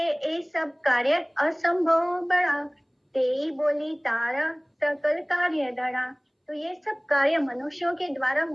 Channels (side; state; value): both; identical; correlation 1.00